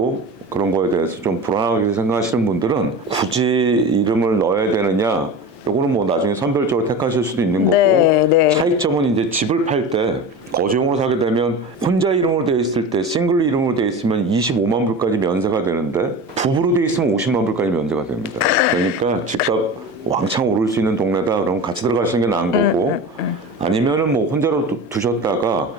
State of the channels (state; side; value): late; right; 1.5 ms